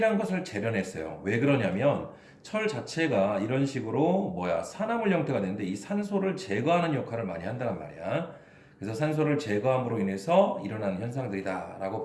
것을 재련했어요. 왜 그러냐면 철 자체가 이런 식으로 산화물 형태가 되는데 이 산소를 제거하는 역할을 많이 한다는 말이야. 그래서 산소를 제거함으로 인해서 일어나는 현상들이다라고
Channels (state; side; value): identical; both; correlation 1.00